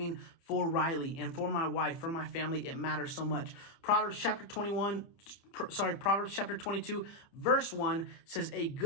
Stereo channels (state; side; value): late; right; 30 ms